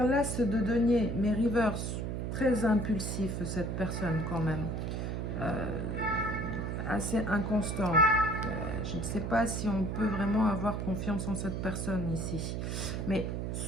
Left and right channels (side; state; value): right; noise; hum, 2 dB below the sound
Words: l'as de denier, mais reverse. Très impulsif cette personne quand même. Euh, Assez inconstant. Je ne sais pas si on peut vraiment avoir confiance en cette personne ici. Mais